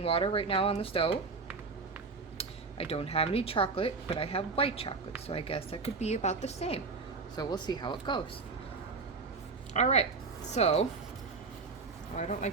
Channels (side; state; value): left; quieter; 4.3 dB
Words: water right now on the stove. I don't have any chocolate, but I have white chocolate, so I guess that could be about the same. So we'll see how it goes. Alright, so, I don't